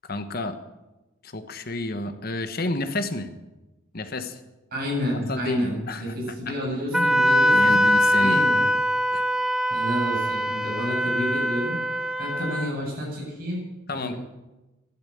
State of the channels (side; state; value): both; normal; correlation 0.84